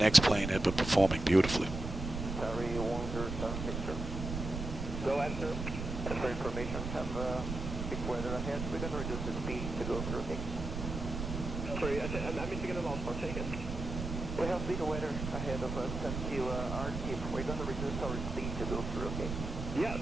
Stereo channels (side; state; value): right; noise; rumble, 5 dB below the sound